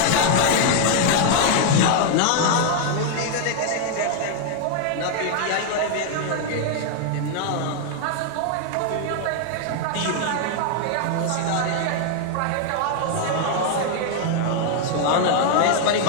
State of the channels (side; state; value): both; different; correlation 0.00